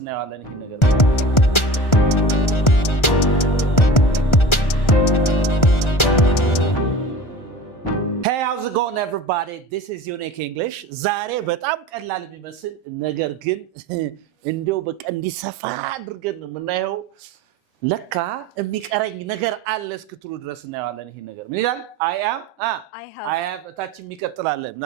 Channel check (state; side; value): late; right; 1.3 ms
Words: እናያለን ይሄን ነገር Hey, how's it going everybody? This is Unique English. ዛሬ በጣም ቀላል የሚመስል ነገር ግን እንደው በቃ እንዲሰፋ አድርገን ነው የምናየው ለካ የሚቀረኝ ነገር አለ እስክትሉ ድረስ እናያለን ይሄን ነገር ምን ይላል I have ታች የሚቀጥላል